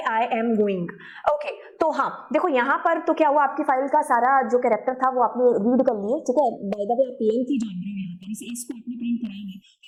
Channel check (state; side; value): identical; both; correlation 1.00